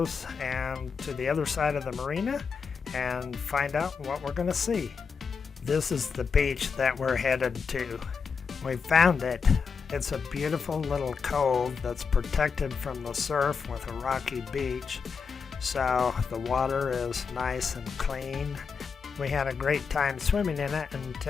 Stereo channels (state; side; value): quieter; right; 5.7 dB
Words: and to the other side of the marina and find out what we're going to see. This is the beach that we're headed to. We found it. It's a beautiful little cove that's protected from the surf with a rocky beach. So the water is nice and clean. We had a great time swimming in it